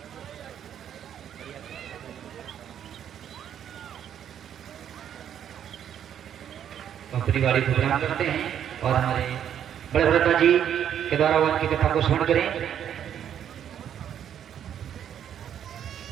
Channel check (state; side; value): quieter; left; 9.5 dB